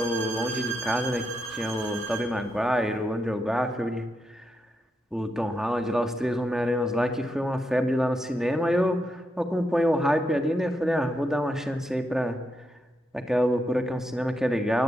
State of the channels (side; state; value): both; normal; correlation 0.83